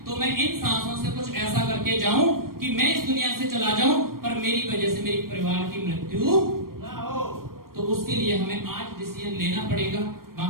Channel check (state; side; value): late; left; 0.92 ms